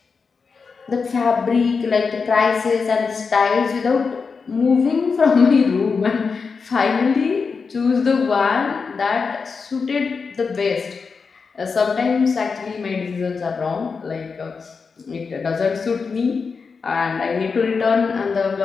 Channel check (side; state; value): right; quieter; 5.1 dB